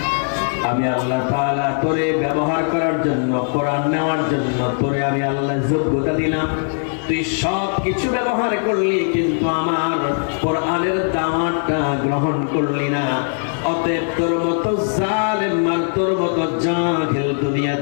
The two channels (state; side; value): silent; right; 62 dB below the other